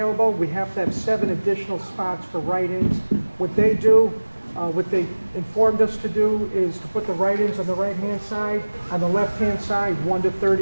We have to have 7 additional spots for write-ins. What they do, what they informed us to do is to put the write-ins on the right-hand side. On the left-hand side, 1 to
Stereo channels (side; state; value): both; inverted; correlation -1.00